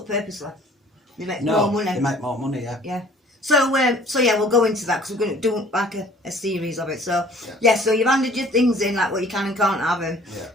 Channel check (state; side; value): normal; both; correlation 0.53